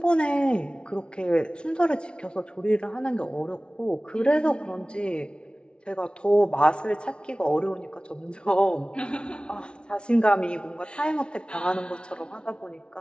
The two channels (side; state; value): right; late; 0.057 ms